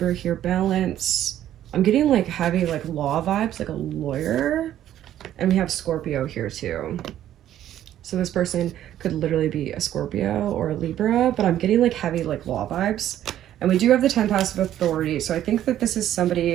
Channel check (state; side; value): quieter; left; 11.9 dB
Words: here, balance. I'm getting like heavy like law vibes, like a lawyer. And we have Scorpio here too. So this person could literally be a Scorpio or a Libra, but I'm getting like heavy like law vibes. And we do have the 10 passive authority. So I think that this is